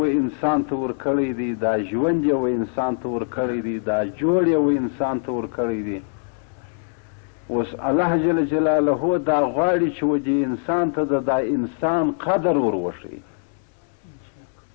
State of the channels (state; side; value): silent; right; digital silence